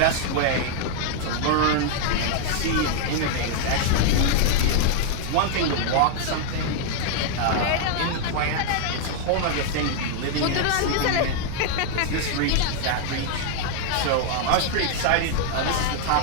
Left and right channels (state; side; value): different; both; correlation 0.00